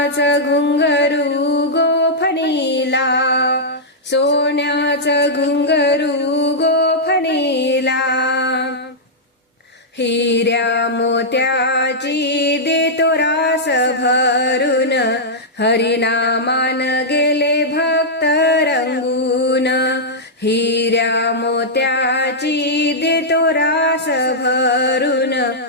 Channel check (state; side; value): normal; both; correlation -0.09